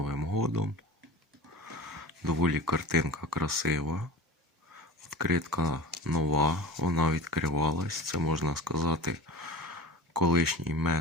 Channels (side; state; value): both; normal; correlation 0.35